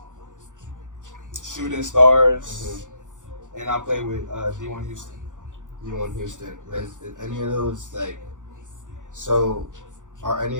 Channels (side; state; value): left; late; 0.86 ms